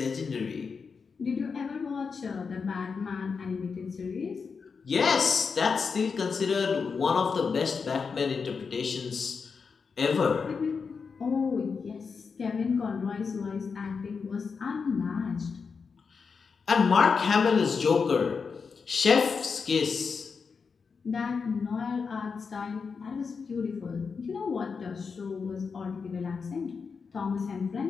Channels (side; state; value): right; quieter; 5.4 dB